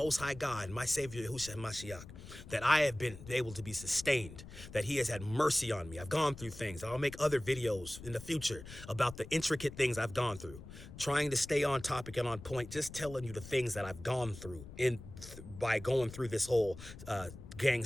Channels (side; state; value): left; noise; rumble, 14 dB below the sound